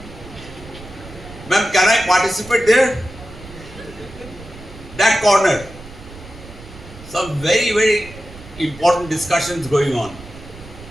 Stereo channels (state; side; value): noise; right; rumble, 17 dB below the sound